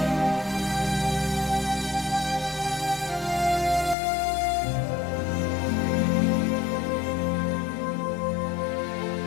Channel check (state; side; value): drops out; right; at 4.0 s